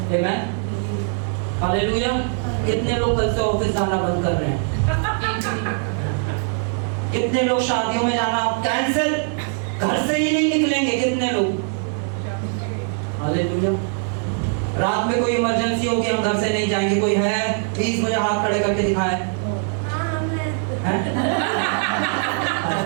आमेन। हालेलुया। कितने लोग कल से ऑफिस जाना बंद कर रहे हैं, कितने लोग शादियों में जाना कैंसिल, घर से ही नहीं निकलेंगे, कितने लोग। हालेलुया। रात में कोई इमरजेंसी होगी, हम घर से नहीं जाएंगे, कोई है प्लीज मुझे हाथ खड़े करके दिखाएं।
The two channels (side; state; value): left; silent; 56 dB below the other